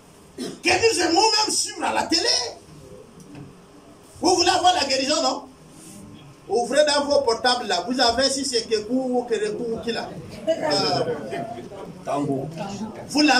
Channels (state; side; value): identical; both; correlation 1.00